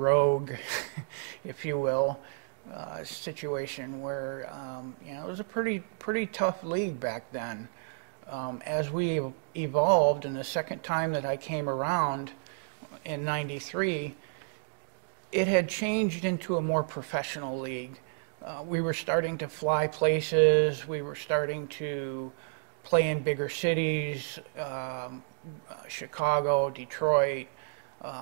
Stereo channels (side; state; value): left; silent; digital silence